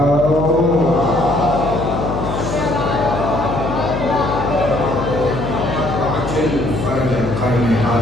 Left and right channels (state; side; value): noise; left; hum, 6 dB below the sound